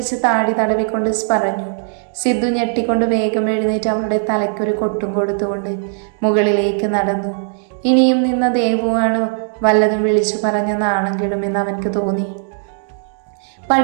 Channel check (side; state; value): left; silent; digital silence